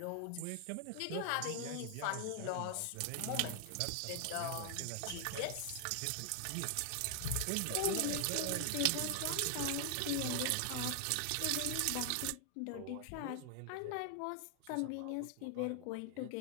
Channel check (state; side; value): different; both; correlation 0.00